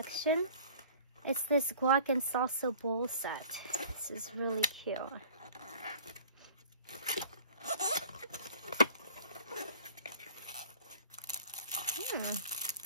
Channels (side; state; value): both; inverted; correlation -0.47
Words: It's this guac and salsa bowl set. This is really cute.